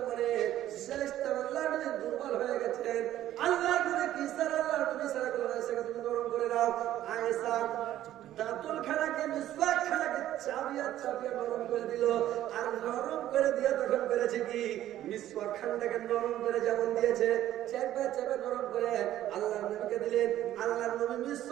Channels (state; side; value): quieter; left; 12.9 dB